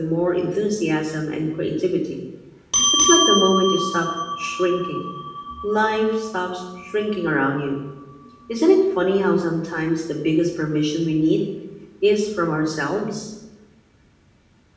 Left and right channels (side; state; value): both; identical; correlation 1.00